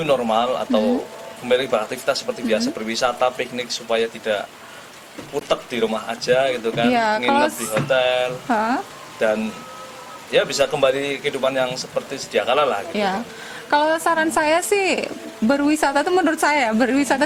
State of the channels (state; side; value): identical; both; correlation 1.00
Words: normal atau kembali beraktivitas seperti biasa, berwisata, piknik, supaya tidak utek di rumah aja gitu kan, Ya, nginep di hotel dan ya bisa kembali kehidupan yang seperti sedia kala lah gitu. Ya, kalau saran saya sih berwisata tuh, menurut saya